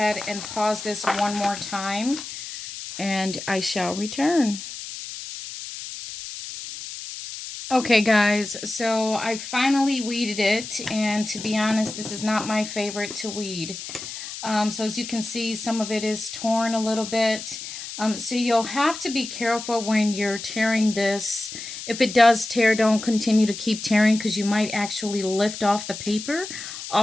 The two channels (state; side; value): noise; left; hiss, 10 dB below the sound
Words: and pause this one more time, and I shall return. Okay guys, so I finally weeded it, and to be honest, this is not my favorite to weed. So as you can see, some of it is torn a little bit. So you'll have to be careful when you're tearing this. If it does tear, don't continue to keep tearing because you might actually lift off the paper